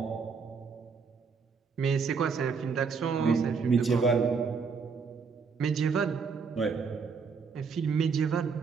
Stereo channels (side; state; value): left; quieter; 5.4 dB